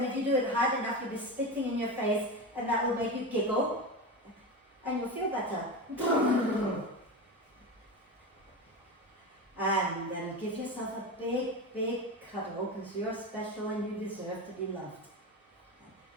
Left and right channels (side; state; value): both; normal; correlation 0.22